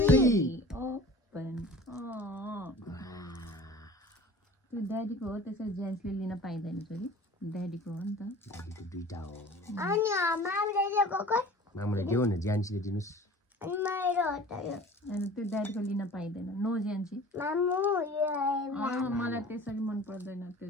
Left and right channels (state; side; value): normal; both; correlation 0.43